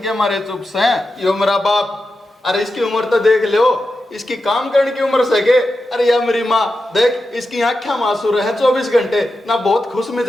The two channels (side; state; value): both; normal; correlation 0.90